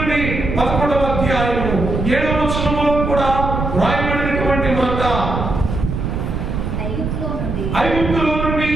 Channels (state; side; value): noise; right; rumble, 3 dB below the sound